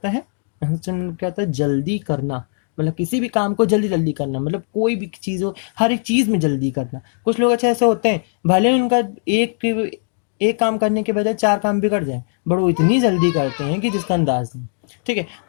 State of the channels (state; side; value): silent; right; 60 dB below the other